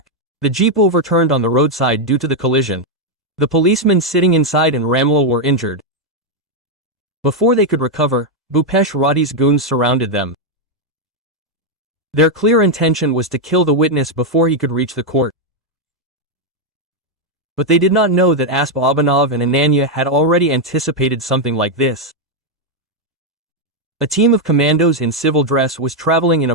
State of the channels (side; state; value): both; normal; correlation 0.01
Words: The jeep overturned on the roadside due to the collision. The policemen sitting inside and Ramlal were injured. Before they could recover, Bhupesh Reddy's goons surrounded them. Their clear intention was to kill the witness before he could reach the court. But they did not know that Asp Abhinav and Ananya had already anticipated something like this. A team of commandos in civil dress was traveling in